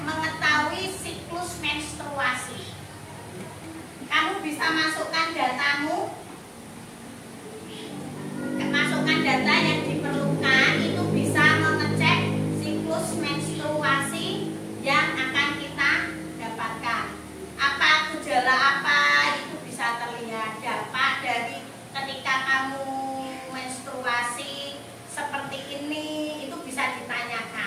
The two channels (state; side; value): identical; both; correlation 1.00